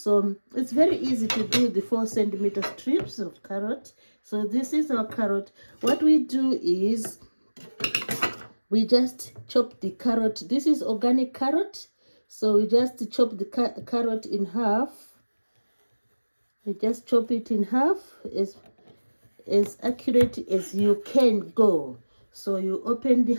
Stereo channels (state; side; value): inverted; both; correlation -1.00